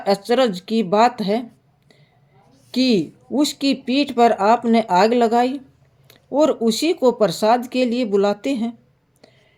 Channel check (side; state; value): both; identical; correlation 1.00